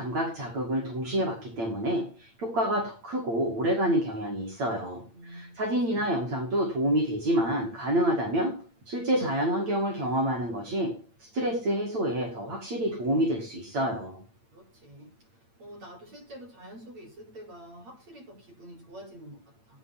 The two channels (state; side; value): late; left; 8.8 ms